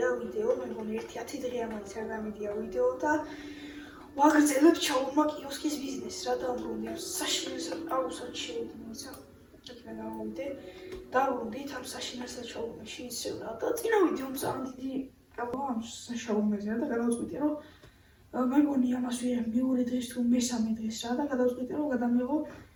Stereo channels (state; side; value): identical; both; correlation 1.00